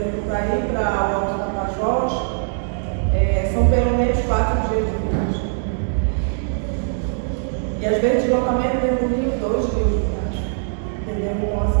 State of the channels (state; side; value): silent; left; digital silence